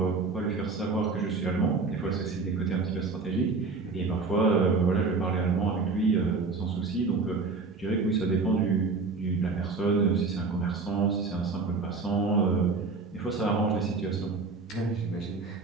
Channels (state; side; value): quieter; left; 4.2 dB